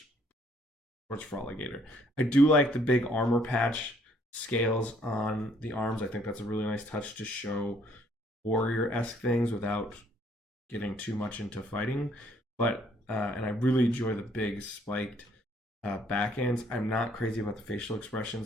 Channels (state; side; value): normal; both; correlation 0.65